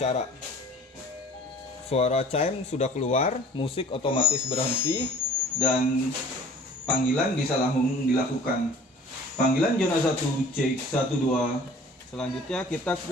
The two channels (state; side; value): normal; both; correlation 0.48